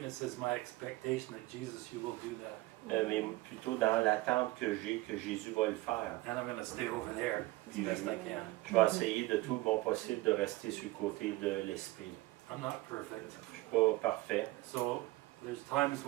is my expectation that Jesus, you will do that. mais plutôt dans l'attente que j'ai que Jésus va le faire. And I'm going to stay over there as best I can. Je vais essayer de tout mon possible de rester sur le côté de l'esprit. I'm not perfect. Je suis pas parfait. So there's times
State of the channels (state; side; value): quieter; left; 19.6 dB